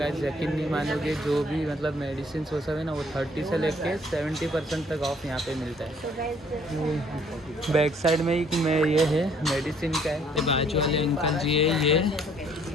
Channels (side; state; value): both; normal; correlation 0.61